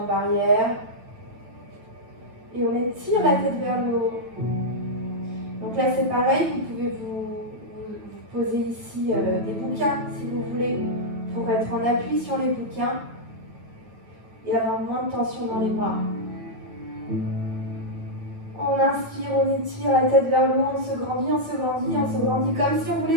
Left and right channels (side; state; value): left; late; 8.9 ms